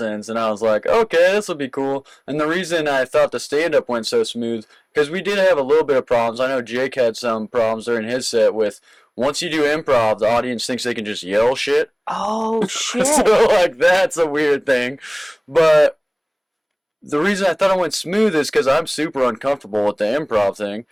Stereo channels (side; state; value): both; identical; correlation 1.00